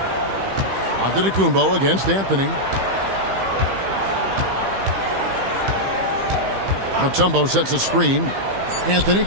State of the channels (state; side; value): late; left; 15 ms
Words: Antetokounmpo against Anthony. Mutombo sets a screen. Anthony